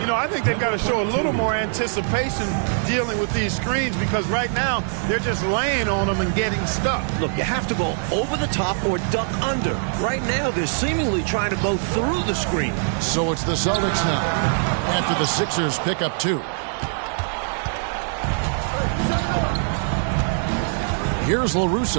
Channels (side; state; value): left; silent; digital silence